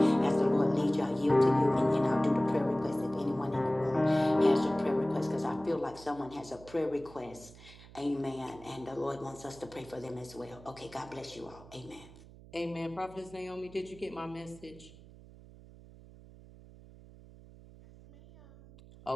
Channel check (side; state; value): right; noise; hum, 20 dB below the sound